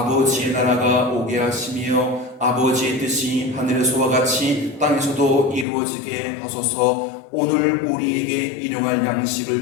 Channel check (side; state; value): right; drops out; at 5.7 s